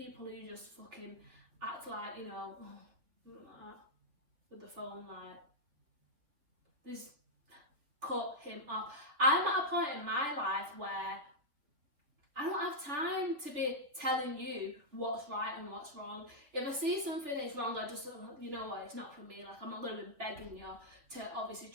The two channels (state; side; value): late; left; 3.6 ms